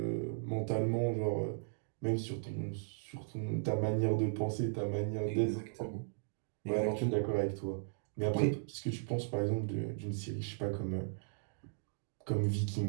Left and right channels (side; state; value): left; silent; digital silence